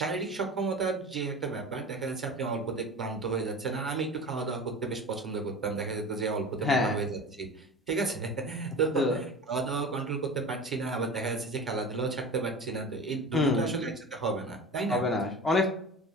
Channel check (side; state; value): both; normal; correlation 0.34